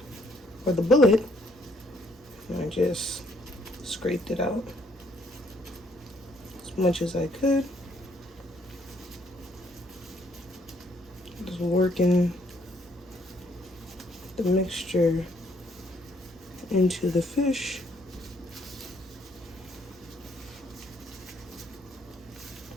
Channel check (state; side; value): normal; both; correlation 0.67